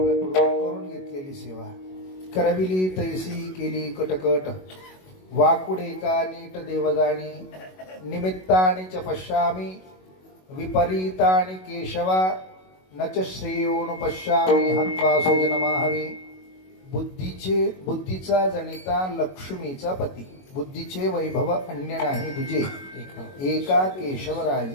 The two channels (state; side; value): late; right; 22 ms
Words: करून घेतलेली सेवा करविली तैसी केली कटकट. वाकुडे का नीट देवगाणी निमित्तानि च पश्यामि विपरीतानि केशवा न च श्रेयोनुपश्यामि हत्वा सुजनमाहवे. बुद्धीचा जनिता लक्ष्मीचा पती बुद्धीचे वैभव अन्य नाही तुझे एका